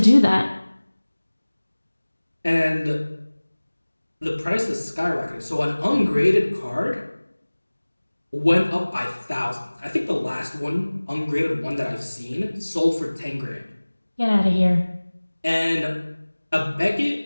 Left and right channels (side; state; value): both; inverted; correlation -1.00